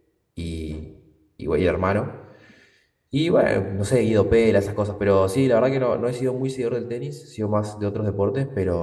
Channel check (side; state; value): both; identical; correlation 1.00